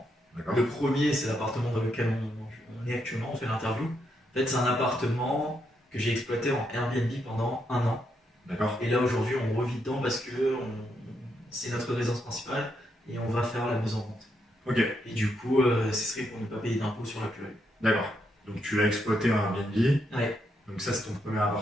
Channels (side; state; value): both; normal; correlation 0.79